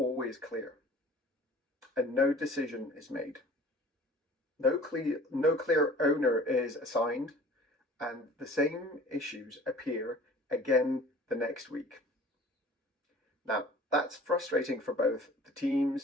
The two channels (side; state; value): both; normal; correlation 0.47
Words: clear, and no decision is made. No clear owner is assigned, and the same issues appear again the next week. Now, that's frustrating for both the